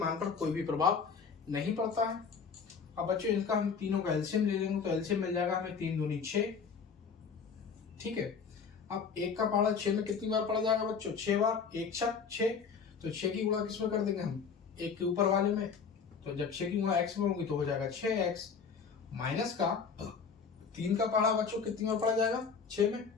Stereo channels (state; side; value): quieter; right; 5.8 dB